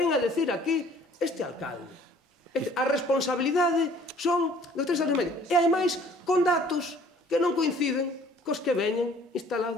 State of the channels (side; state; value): both; normal; correlation 0.55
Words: a decir aquí este alcalde. A responsabilidade son dos 3 anos e medio. E ademais, con datos que non coinciden cos que veñen